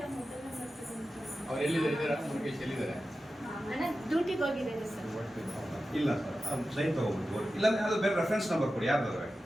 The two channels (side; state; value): both; normal; correlation 0.93